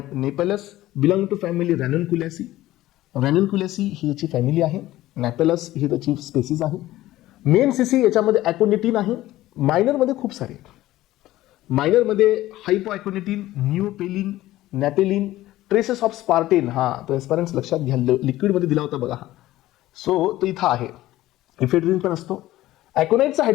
napellus belong to family Ranunculaceae. Ranunculaceae ही याची फॅमिली आहे, नॅपेलस ही त्याची स्पेसिस आहे. मेन सीसी याच्यामध्ये ॲकोनिटिन आहे. मायनरमध्ये खूप सारे, मायनरमध्ये हायपोॲकोनिटिन, न्यूपेलिन, नॅपेलिन, ट्रेसेस ऑफ स्पार्टेन. हा तर एस्पायरंट्स लक्षात घ्या, लिक्विडमध्ये दिला होता बघा हा. सो तो इथं आहे. इफेड्रिन पण असतो. ॲकोनाइटचं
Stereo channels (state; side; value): quieter; right; 15.8 dB